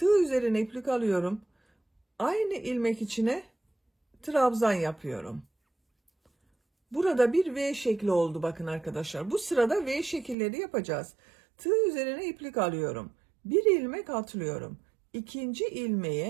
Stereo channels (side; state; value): left; drops out; at 10.4 s